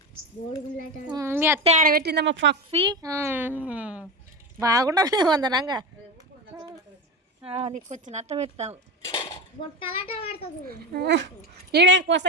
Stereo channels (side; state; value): both; normal; correlation 0.20